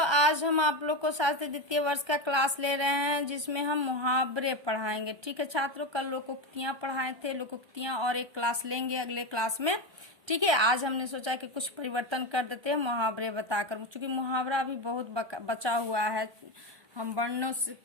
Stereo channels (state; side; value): late; left; 1.3 ms